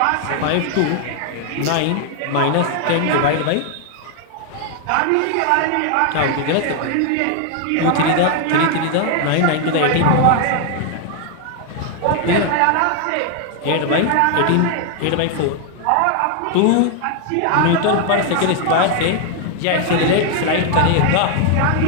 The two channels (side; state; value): both; different; correlation 0.00